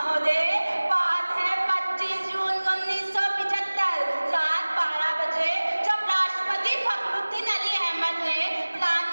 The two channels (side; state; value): both; inverted; correlation -1.00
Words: बात है 25 जून 1975 रात 12 बजे, जब राष्ट्रपति फखरुद्दीन अली अहमद ने